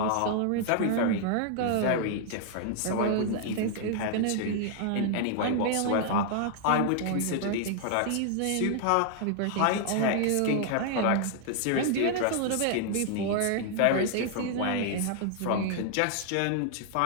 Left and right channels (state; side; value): different; both; correlation 0.00